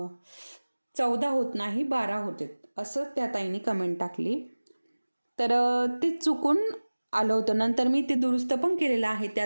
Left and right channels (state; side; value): inverted; both; correlation -1.00